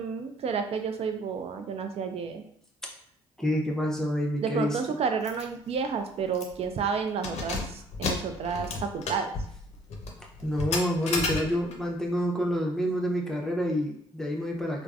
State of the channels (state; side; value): normal; both; correlation 0.60